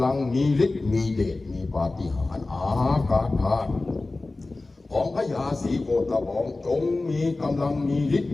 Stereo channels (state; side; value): quieter; right; 3.2 dB